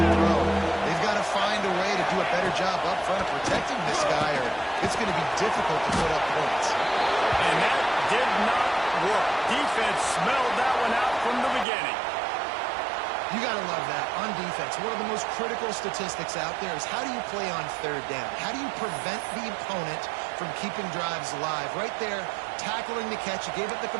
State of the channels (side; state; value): left; drops out; at 11.7 s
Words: throw. They've got to find a way to do a better job up front of protecting this guy, or it's going to be difficult to put up points. And that did not work. Defense smelled that one out from the beginning. You got to love that. On defense, one of the most critical statistics out there is how do you play on third down? How do you prevent the opponent from keeping drives alive? Right there, tackling the catch. You gave it the